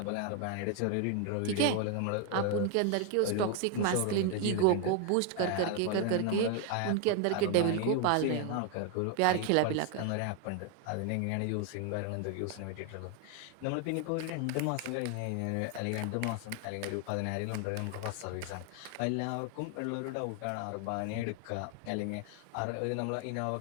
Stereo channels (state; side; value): different; both; correlation 0.01